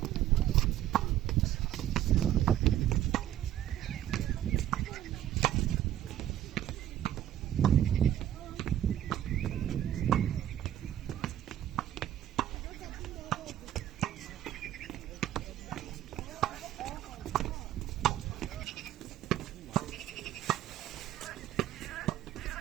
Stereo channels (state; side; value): quieter; left; 12.0 dB